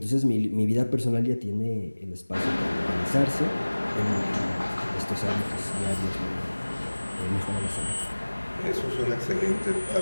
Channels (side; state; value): both; inverted; correlation -1.00